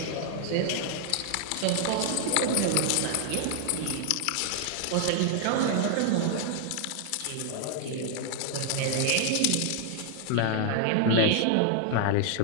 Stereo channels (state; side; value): different; both; correlation 0.00